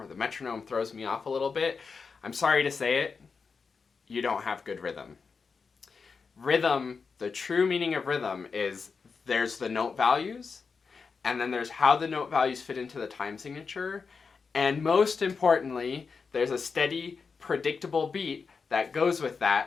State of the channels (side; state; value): right; quieter; 5.2 dB